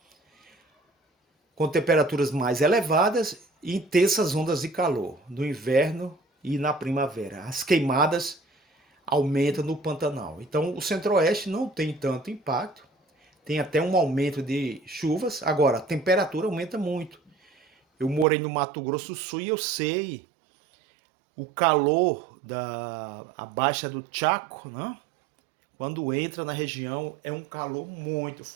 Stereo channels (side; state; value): left; drops out; at 18.2 s